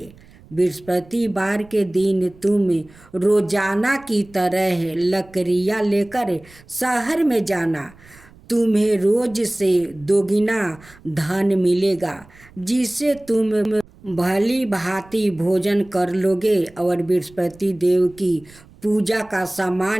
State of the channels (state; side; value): noise; right; rumble, 25 dB below the sound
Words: बृहस्पतिवार के दिन तुम रोजाना की तरह लकड़ियाँ लेकर शहर में जाना। तुम्हें रोज से दोगुना धन मिलेगा, जिससे तुम भली भांति भोजन कर लोगे और बृहस्पति देव की पूजा का